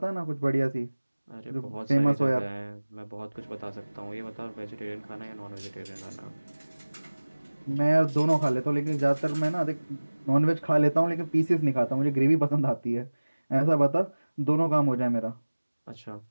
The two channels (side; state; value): both; inverted; correlation -1.00